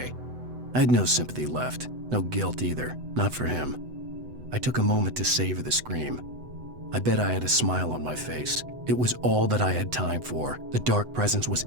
I had no sympathy left, no guilt either, not for him. I took a moment to savor the scream. I bet I had a smile on my face. It was all that I had time for. The dark presence was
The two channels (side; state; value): left; late; 8.0 ms